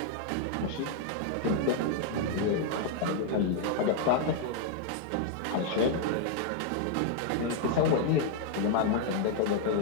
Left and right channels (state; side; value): different; both; correlation 0.00